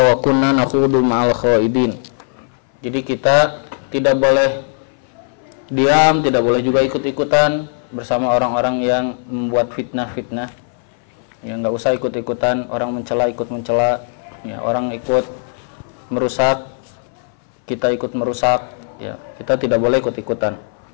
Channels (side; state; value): right; silent; 60 dB below the other